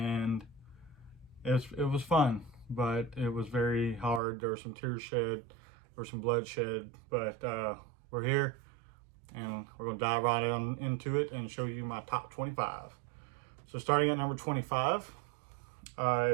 it was fun, but it was very hard. There were some tears shed, there was some bloodshed, but we're here, and we're going to dive right on into it and show you my top 25. So starting at number 25 is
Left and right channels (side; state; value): left; drops out; at 4.2 s